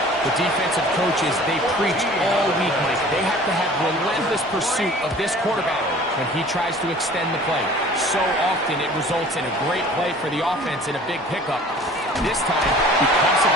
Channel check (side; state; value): both; normal; correlation 0.47